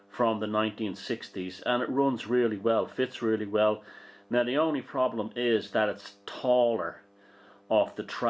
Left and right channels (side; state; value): both; identical; correlation 1.00